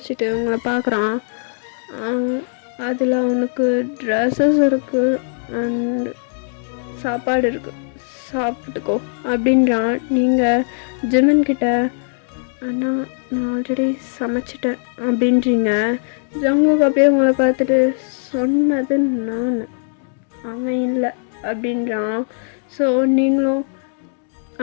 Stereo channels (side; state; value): right; silent; digital silence